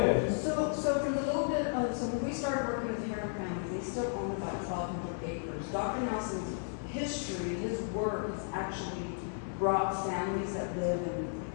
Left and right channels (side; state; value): right; silent; digital silence